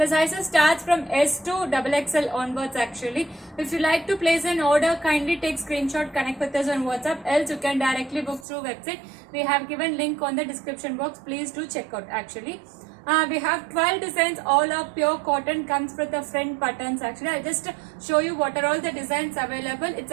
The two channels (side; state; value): left; drops out; at 8.5 s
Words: sizes starts from S to XXL onwards actually. If you like to place an order, kindly take screenshot, connect with us on WhatsApp. Else you can directly book through website. We have given link on the description box. Please do check out actually. We have 12 designs, all are pure cotton, comes with the front buttons actually. I'll just show you what are all the designs available. It's